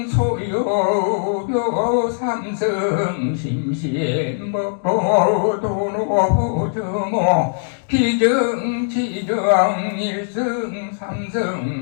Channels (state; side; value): silent; right; digital silence